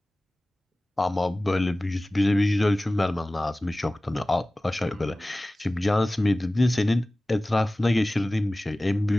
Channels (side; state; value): both; normal; correlation 0.98